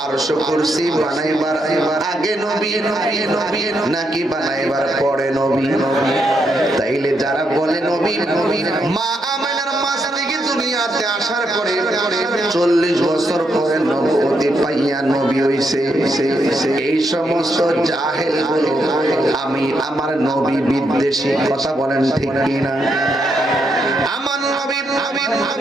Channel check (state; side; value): normal; both; correlation 0.79